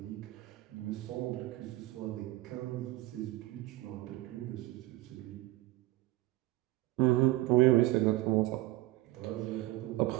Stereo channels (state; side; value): quieter; left; 18.0 dB